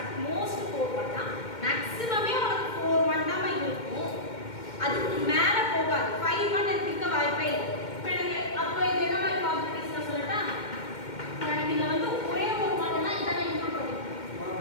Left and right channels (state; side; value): late; right; 2.1 ms